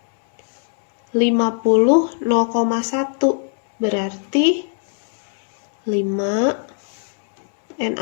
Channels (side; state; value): right; silent; 65 dB below the other